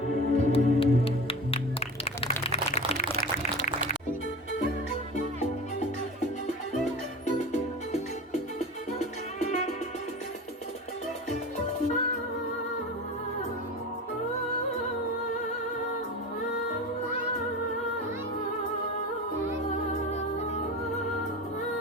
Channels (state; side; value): normal; both; correlation 0.31